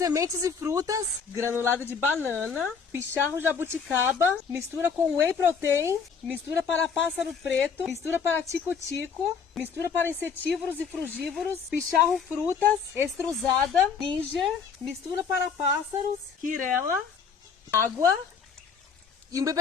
e frutas, granulado de banana, picharro jabuticaba, mistura com whey protein, mistura para pássaro preto, mistura para tico-tico, mistura para insetívoros e frugívoros, picharro frutas, extrusada, ginger, mistura para pássaros, quirela, água e um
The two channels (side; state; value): right; quieter; 6.1 dB